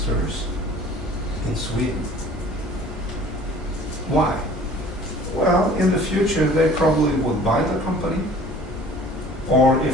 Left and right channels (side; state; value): both; normal; correlation 0.49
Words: in Sweden. Why? Well, in the future they probably would buy the company, or